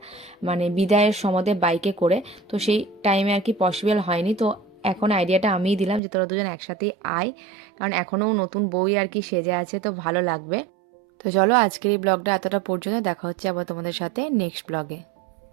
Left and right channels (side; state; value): left; drops out; at 6.0 s